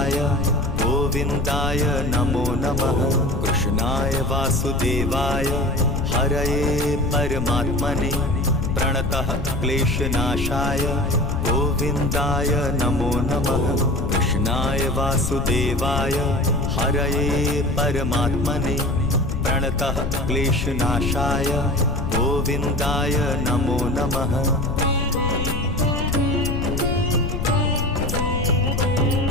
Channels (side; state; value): left; noise; rumble, 3 dB below the sound